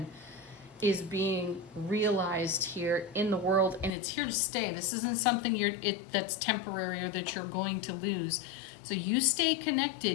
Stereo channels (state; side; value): drops out; right; at 4.0 s